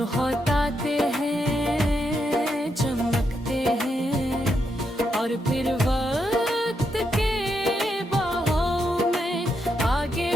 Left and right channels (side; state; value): both; normal; correlation 0.81